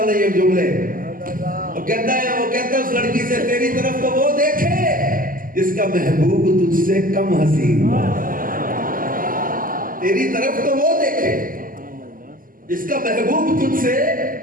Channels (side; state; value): left; late; 0.41 ms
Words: नहीं है जुमले। वो कहता है उस लड़की से, तेरी तरफ तो वो देखे जिसका महबूब तुझसे कम हसीन, तेरी तरफ तो वो देखे जिसका महबूब तुझसे